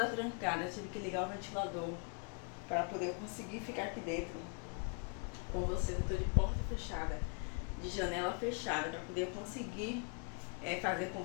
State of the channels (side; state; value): right; quieter; 38.8 dB